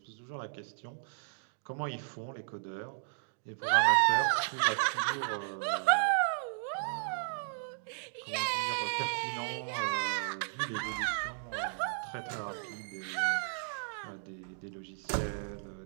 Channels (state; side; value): silent; left; digital silence